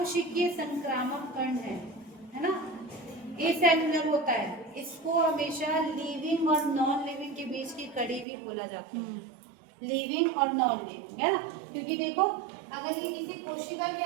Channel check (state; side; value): drops out; left; at 8.2 s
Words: संक्रामक कण है ना, एसेलुलर होता है, इसको हमेशा लिविंग और नॉन लिविंग के बीच की कड़ी भी बोला जाता है, लिविंग और नॉन लिविंग, है ना। क्योंकि देखो अगर ये किसी कोशिका के